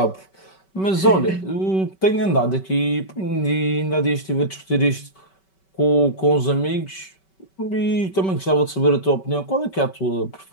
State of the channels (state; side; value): late; right; 5.2 ms